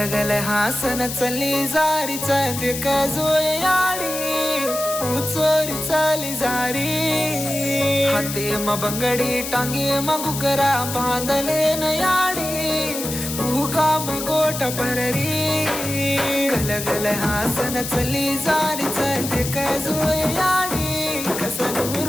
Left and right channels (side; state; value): left; noise; hiss, 6 dB below the sound